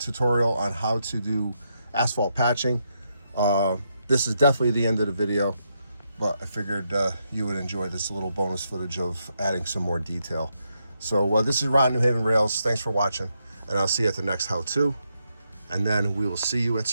on how to do asphalt patching. This is definitely the end of the video, but I figured you would enjoy this little bonus footage of adding some more detail. So this is Ron, New Haven Rails. Thanks for watching, and I'll see you at the next how-to, and then we will see you at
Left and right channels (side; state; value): both; inverted; correlation -0.81